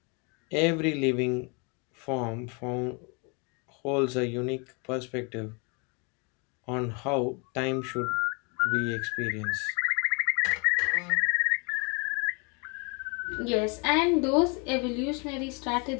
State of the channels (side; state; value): right; quieter; 32.5 dB